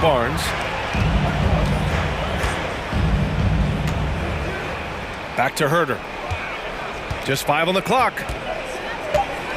Back to Herter. Just 5 on the clock.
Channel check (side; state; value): both; identical; correlation 1.00